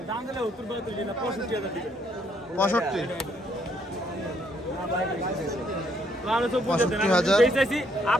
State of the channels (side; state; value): both; normal; correlation 0.70